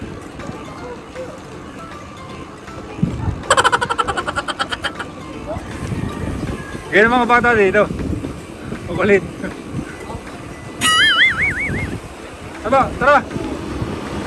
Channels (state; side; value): identical; both; correlation 1.00